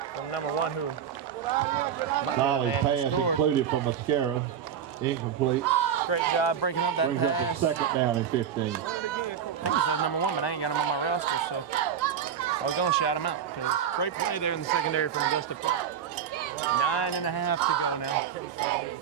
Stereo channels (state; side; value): quieter; left; 8.4 dB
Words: from #1 who. Solly pass included from Mascaro. Incomplete. Great job breaking up that pass. Brings up the 2nd down and 15. I think he said #1, but I ain't got him on my roster, so I was going to shout him out. Great play there in the secondary from Augusta. 9.5 to go now.